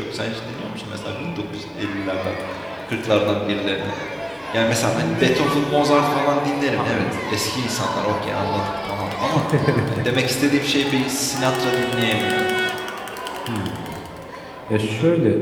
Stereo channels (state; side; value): identical; both; correlation 1.00